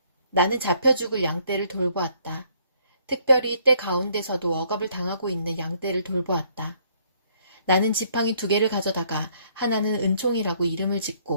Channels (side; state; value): both; inverted; correlation -0.65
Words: 나는 잡혀 죽을 양떼를 돌보았다. 특별히 때 가운데서도 억압을 당하고 있는 양떼를 돌보았다. 나는 지팡이 2개를 가져다가 하나는 은총이라고 이름을